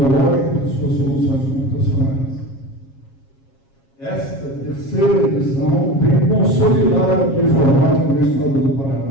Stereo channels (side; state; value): right; late; 7.4 ms